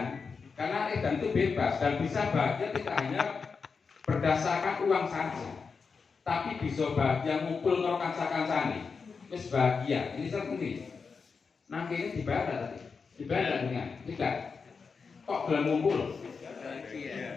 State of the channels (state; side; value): quieter; right; 5.2 dB